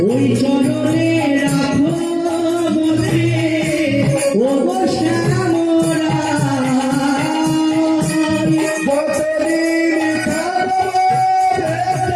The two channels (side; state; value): both; identical; correlation 1.00